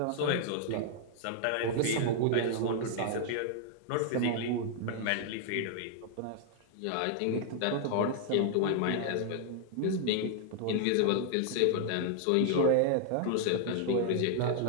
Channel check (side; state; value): both; different; correlation 0.00